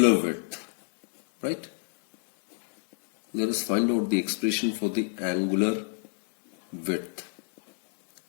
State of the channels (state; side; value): silent; right; 57 dB below the other